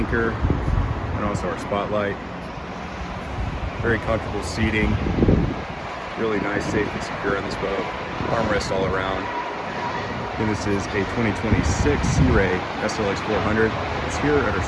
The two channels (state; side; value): identical; both; correlation 1.00